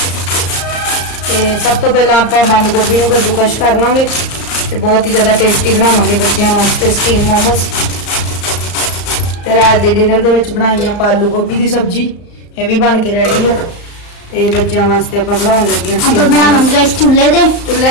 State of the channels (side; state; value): right; late; 34 ms